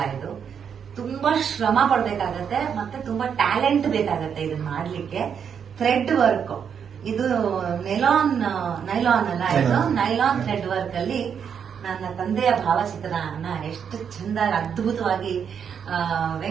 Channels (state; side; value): quieter; left; 7.5 dB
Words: ಇದು ತುಂಬಾ ಶ್ರಮ ಪಡ್ಬೇಕಾಗತ್ತೆ ಮತ್ತೆ ತುಂಬಾ ಟ್ಯಾಲೆಂಟ್ ಬೇಕಾಗತ್ತೆ ಇದನ್ನ ಮಾಡ್ಲಿಕ್ಕೆ. ಥ್ರೆಡ್ ವರ್ಕ್ ಇದು ನೈಲಾನ್ ಅಲ್ಲ, ಇದು ನೈಲಾನ್ ಥ್ರೆಡ್ ವರ್ಕ್ ಅಲ್ಲಿ ನನ್ನ ತಂದೆಯ ಭಾವಚಿತ್ರನ ಎಷ್ಟು ಚಂದ ಅದ್ಭುತವಾಗಿ